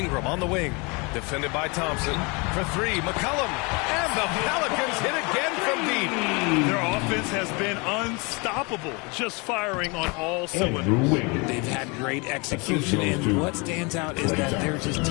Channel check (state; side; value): quieter; right; 29.2 dB